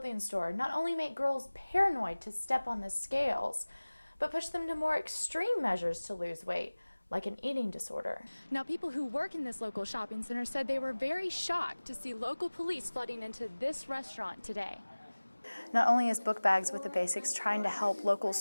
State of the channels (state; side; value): inverted; both; correlation -1.00